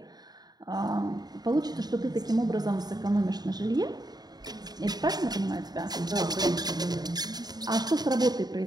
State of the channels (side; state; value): left; late; 0.19 ms